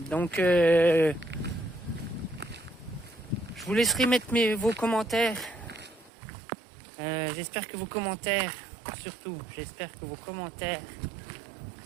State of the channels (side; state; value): left; drops out; at 6.1 s